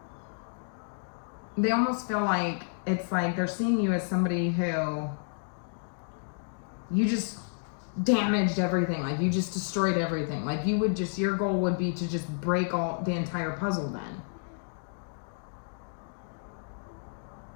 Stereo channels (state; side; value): silent; right; digital silence